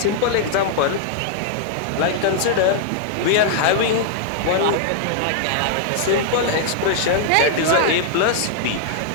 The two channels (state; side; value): different; both; correlation -0.01